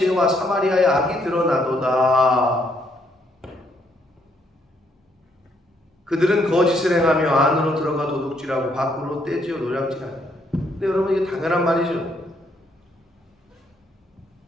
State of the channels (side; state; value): both; normal; correlation 0.72